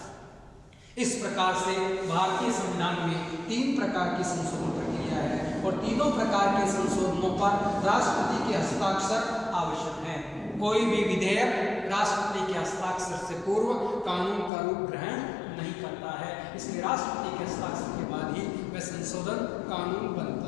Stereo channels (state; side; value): drops out; right; at 14.5 s